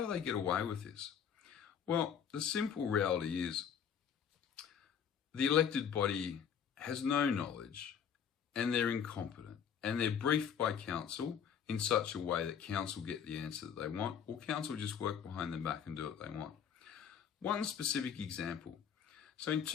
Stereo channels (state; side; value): quieter; right; 7.9 dB